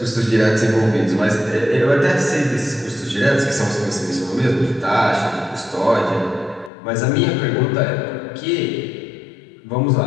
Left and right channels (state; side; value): drops out; right; at 6.7 s